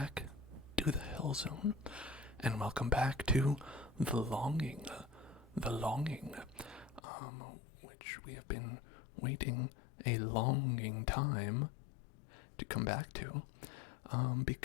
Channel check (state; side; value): drops out; right; at 7.0 s